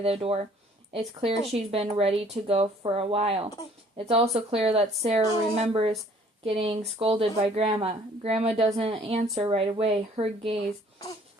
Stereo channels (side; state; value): both; normal; correlation 0.57